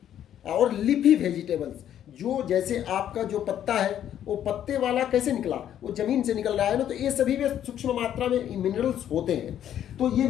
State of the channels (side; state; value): right; quieter; 10.5 dB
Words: और लीफी वेजिटेबल्स, जो जैसे आपका जो पत्ता है वो पत्ते वाला कैसे निकला, वो जमीन से निकल रहा है ना, तो ये सभी में सूक्ष्म मात्रा में मिनरल्स होते हैं। तो ये